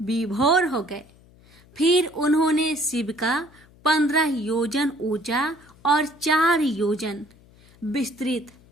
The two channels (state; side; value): noise; left; hum, 27 dB below the sound